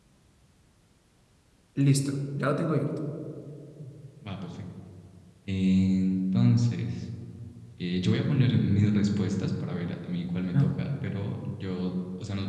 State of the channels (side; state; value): both; identical; correlation 1.00